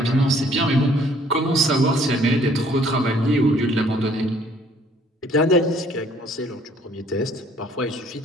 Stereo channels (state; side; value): normal; both; correlation 0.60